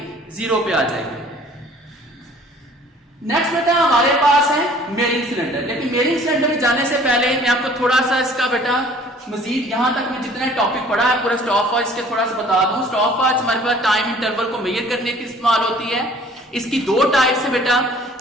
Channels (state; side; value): normal; both; correlation 0.53